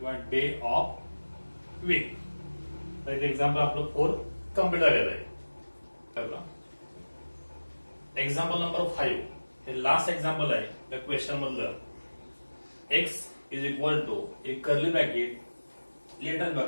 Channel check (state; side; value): inverted; both; correlation -1.00